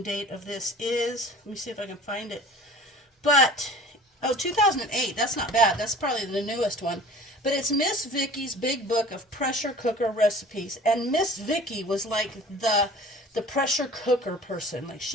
date of this is. Let me see if I can find it. But, oh, 2008. That's not bad. That's probably the newest one. But it's Miss Vicky's Big Book of Pressure Cooker Recipes. And Miss Vicky was like the pressure cooker person. Like,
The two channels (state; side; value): normal; both; correlation 0.44